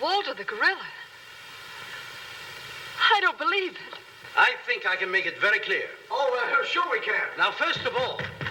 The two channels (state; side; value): identical; both; correlation 1.00